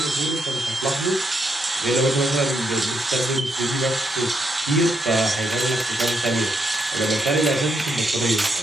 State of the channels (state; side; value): normal; both; correlation 0.79